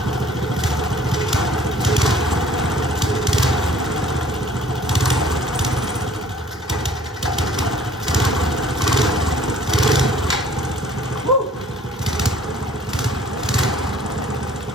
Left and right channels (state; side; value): normal; both; correlation 0.54